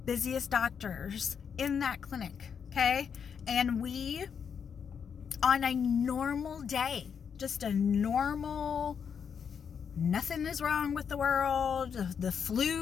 doctors in that clinic, okay? And we, on a normal day, just a normal, nothing is wrong with the world, the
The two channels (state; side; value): quieter; right; 7.0 dB